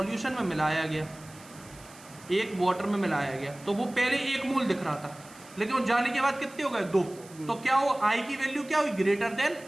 में मिलाया गया, एक वाटर में मिलाया गया, तो वो पहले 1 मोल दिख रहा था, लेकिन वो जाने के बाद कितने हो गए, 2। तो क्या हो, आई की वैल्यू क्या हुई, ग्रेटर देन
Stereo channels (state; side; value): noise; right; hiss, 22 dB below the sound